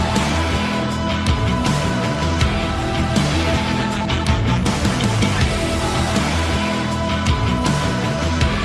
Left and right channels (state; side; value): identical; both; correlation 1.00